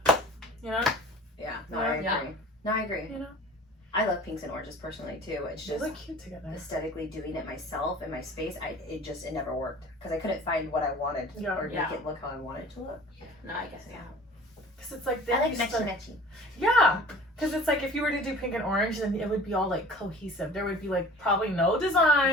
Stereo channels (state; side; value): normal; both; correlation 0.44